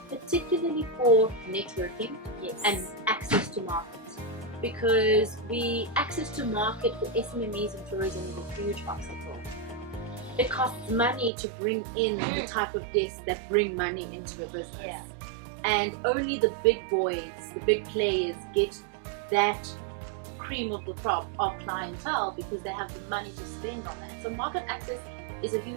particularly for networking and access to markets. Because access to market for SMMEs in tourism is a huge obstacle. It costs money to bring in the type of guests that bring money into a business. And only the big boys, the big players get that cream of the crop of clientele because they have the money to spend on that. So market access is a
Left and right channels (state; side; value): drops out; left; at 11.3 s